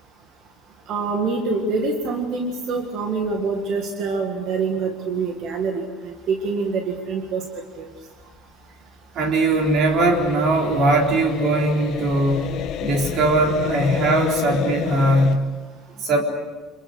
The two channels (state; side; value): normal; both; correlation 0.47